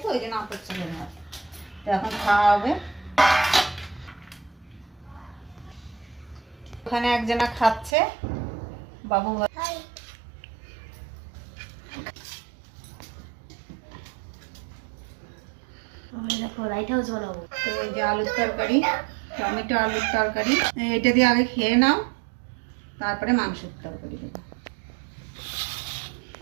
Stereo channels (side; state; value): left; drops out; at 7.9 s